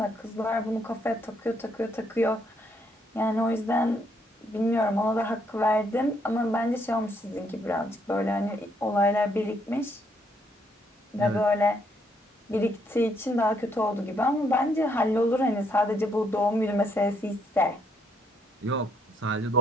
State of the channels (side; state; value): both; normal; correlation 0.72